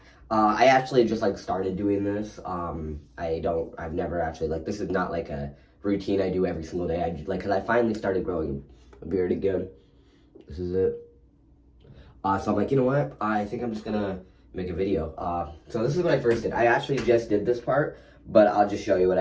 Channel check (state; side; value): identical; both; correlation 1.00